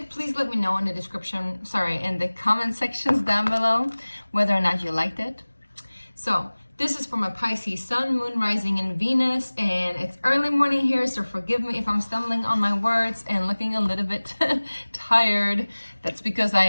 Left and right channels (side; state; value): both; inverted; correlation -1.00